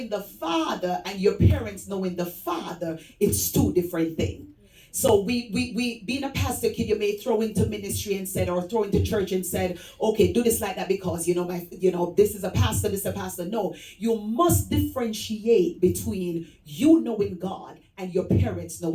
the Father and your parents knowing the Father, it's two different things. So we being a pastor kid, you may throw into ministry and said, or throw into church and said, okay, do this like that because this is a pastor, this is a pastor. No, you must differentiate between you knowing God and your parents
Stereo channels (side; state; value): both; identical; correlation 1.00